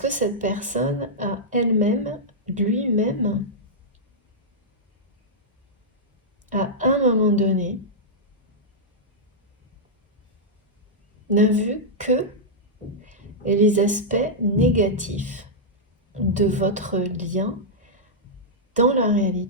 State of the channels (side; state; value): both; normal; correlation -0.08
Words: cette personne a elle-même, lui-même, à un moment donné, n'a vu que les aspects négatifs de votre lien dans la